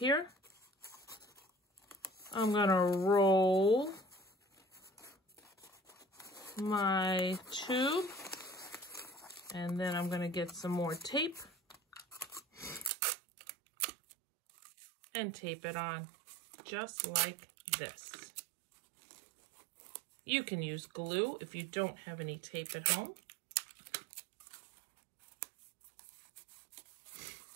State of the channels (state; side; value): drops out; left; at 12.9 s